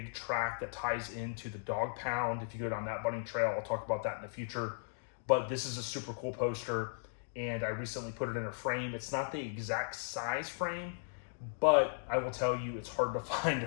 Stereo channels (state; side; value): silent; right; digital silence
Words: track that ties into the Dog Pound. If you go down that bunny trail, I'll talk about that in the future. But this is a super cool poster, and I recently put it in a frame. It's not the exact size frame, but I will tell you, it's hard to find